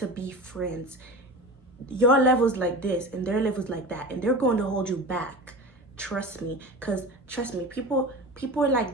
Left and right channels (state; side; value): normal; both; correlation 0.32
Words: be friends. Your level's like this and their level's like that, and they're going to hold you back. Trust me, because trust me, people are